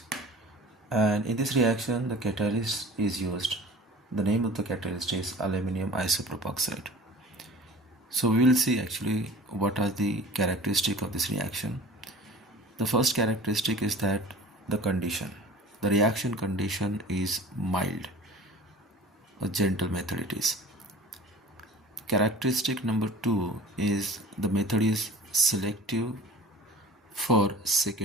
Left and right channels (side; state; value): both; normal; correlation 0.42